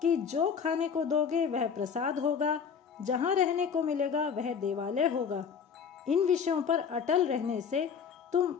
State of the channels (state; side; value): quieter; right; 6.7 dB